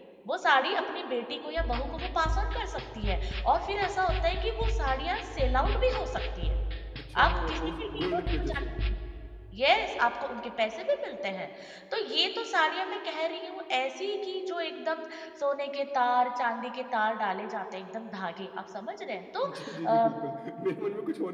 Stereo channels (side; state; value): both; identical; correlation 1.00